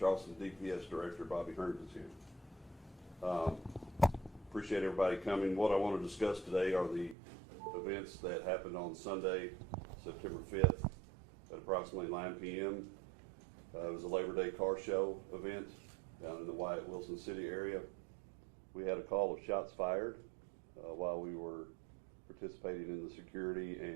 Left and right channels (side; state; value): left; drops out; at 7.2 s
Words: DPS Director Bobby Hearns is here. Appreciate everybody coming. What I want to discuss today are the events that happened on Sunday, September 5th at approximately 9 p.m. It was a Labor Day car show event down in the Wyatt Wilson City area. We had a call of shots fired while we were participating in the security